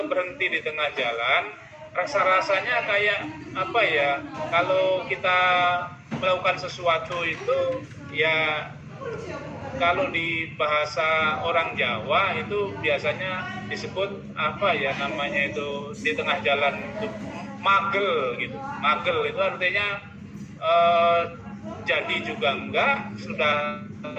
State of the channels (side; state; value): both; identical; correlation 1.00